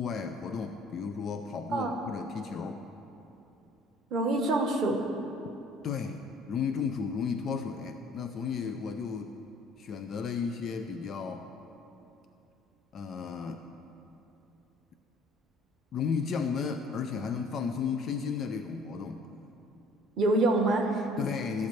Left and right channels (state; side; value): normal; both; correlation 0.55